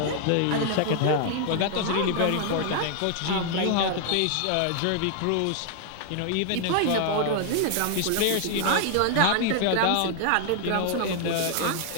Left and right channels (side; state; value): both; different; correlation 0.00